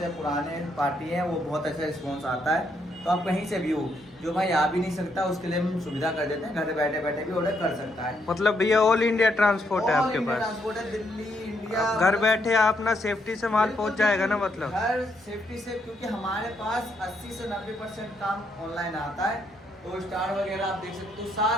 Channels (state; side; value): normal; both; correlation 0.76